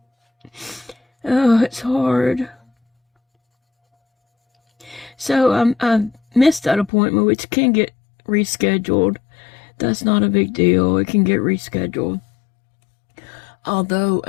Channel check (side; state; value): right; drops out; at 6.9 s